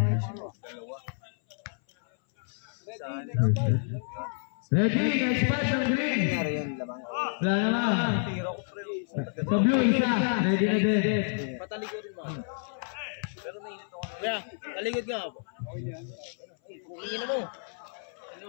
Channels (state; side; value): silent; right; 58 dB below the other